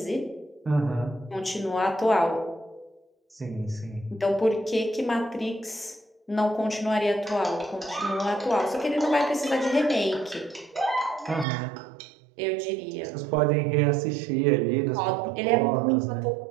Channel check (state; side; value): drops out; left; at 11.5 s